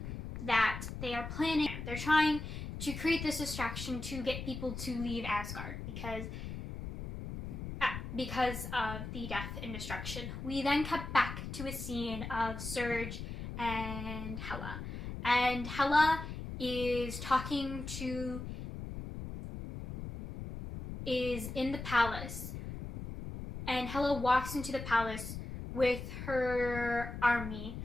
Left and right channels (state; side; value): noise; left; rumble, 7 dB below the sound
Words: they're trying to create this distraction to get people to leave Asgard because of the death and destruction. We then cut back to a scene of Surge and Hela. And Hela is in the palace. And Hela walks into the palace with her army